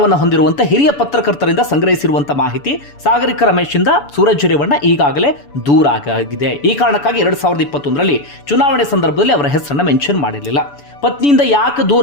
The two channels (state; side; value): late; right; 7.0 ms